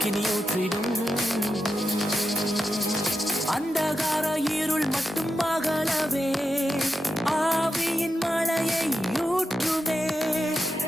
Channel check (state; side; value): normal; both; correlation 0.89